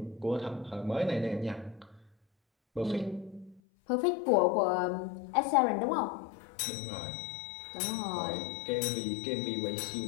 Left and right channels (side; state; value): right; drops out; at 3.6 s